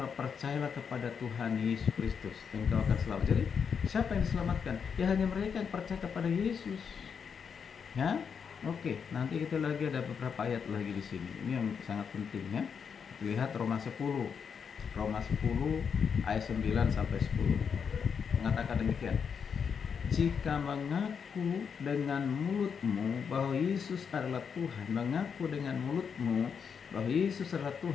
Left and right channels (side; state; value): right; quieter; 6.6 dB